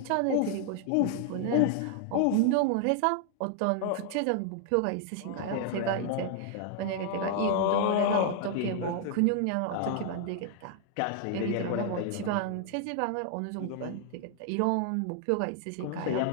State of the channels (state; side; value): different; both; correlation 0.00